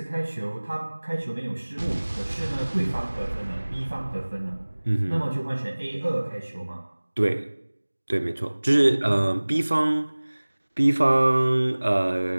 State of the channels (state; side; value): inverted; both; correlation -1.00